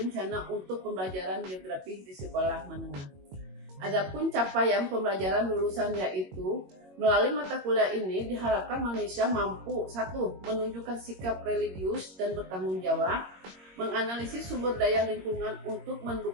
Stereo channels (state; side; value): late; left; 21 ms